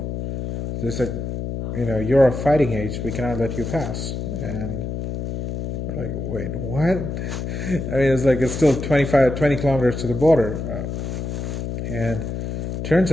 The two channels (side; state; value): left; noise; hum, 4 dB below the sound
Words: They said, you're of fighting age. We cannot let you pass. And we're like, wait, what? I mean, it's still 20 kilometers to the border. And turns